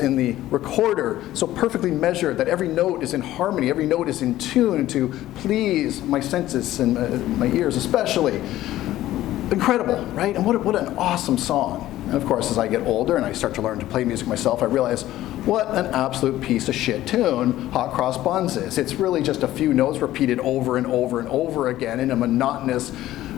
the recorder so perfectly measured that every note is in harmony, every note is in tune to please my senses and my ears especially. Incredible, right? And what an awesome song. And of course, as I get older and I start to learn to play music myself, I realize what an absolute piece of shit tune Hot Cross Buns is. It's really just a few notes repeated over and over and over again in a monotonous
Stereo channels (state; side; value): quieter; right; 14.5 dB